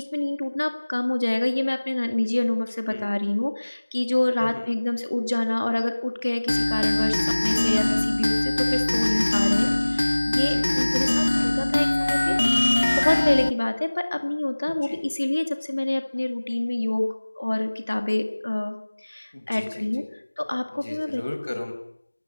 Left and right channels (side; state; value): both; inverted; correlation -1.00